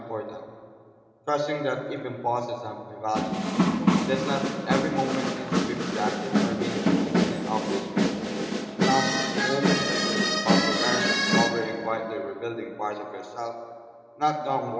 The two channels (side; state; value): both; identical; correlation 1.00